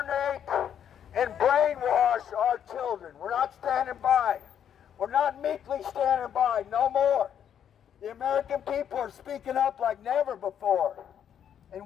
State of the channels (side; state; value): right; quieter; 9.0 dB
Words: and brainwash our children. We're not standing by. We're not meekly standing by, no more. The American people are speaking up like never before. And